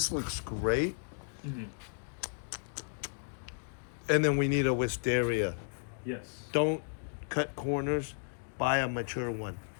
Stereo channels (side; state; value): right; silent; digital silence